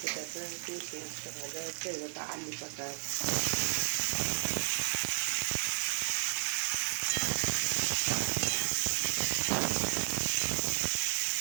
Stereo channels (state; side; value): silent; left; digital silence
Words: একটু পেঁয়াজটা ভাজা হচ্ছে, এবার আলু কাটা